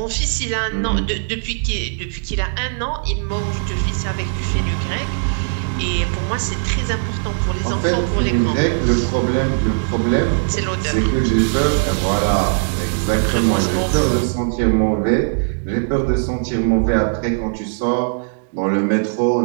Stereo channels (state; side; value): silent; left; digital silence